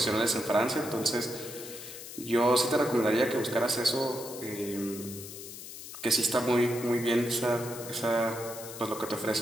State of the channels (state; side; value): noise; left; hiss, 12 dB below the sound